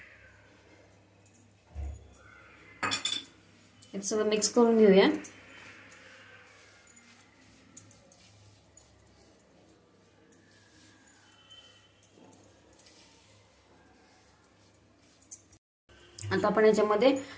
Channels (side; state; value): both; identical; correlation 1.00